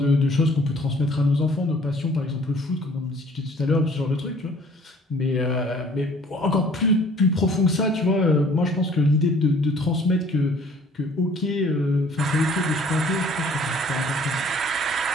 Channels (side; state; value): both; normal; correlation 0.55